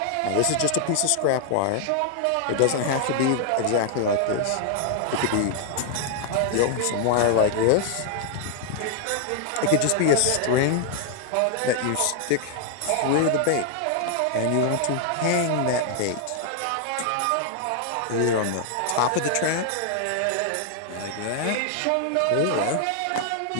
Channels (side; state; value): both; different; correlation 0.00